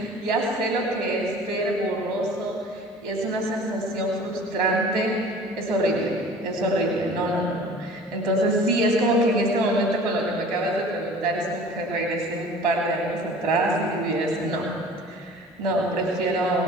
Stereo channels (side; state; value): both; normal; correlation 0.45